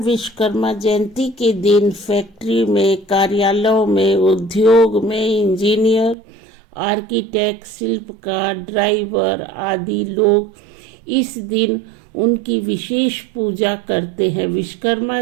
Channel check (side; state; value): left; drops out; at 6.2 s